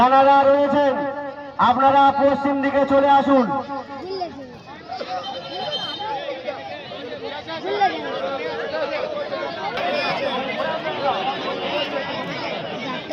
রয়েছেন আপনারা পশ্চিম দিকে চলে আসুন।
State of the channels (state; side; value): identical; both; correlation 1.00